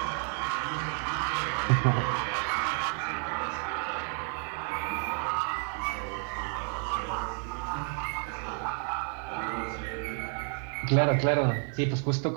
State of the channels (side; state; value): left; quieter; 39.5 dB